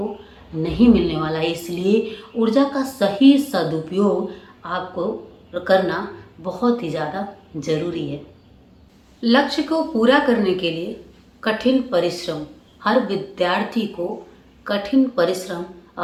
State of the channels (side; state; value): both; identical; correlation 1.00